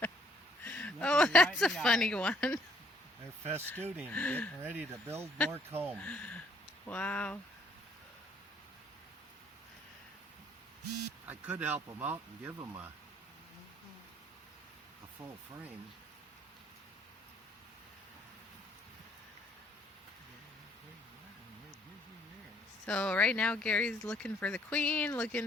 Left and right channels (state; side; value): normal; both; correlation 0.65